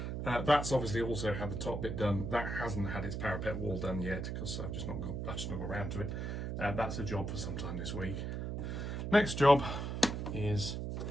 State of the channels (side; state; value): right; noise; hum, 3 dB below the sound